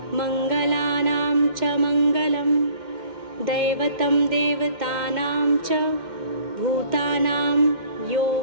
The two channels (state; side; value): late; left; 2.1 ms